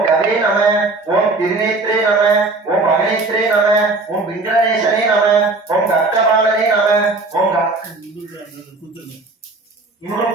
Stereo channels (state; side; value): quieter; left; 3.4 dB